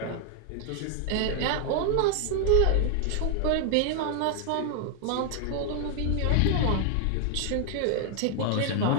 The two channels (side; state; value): both; different; correlation 0.00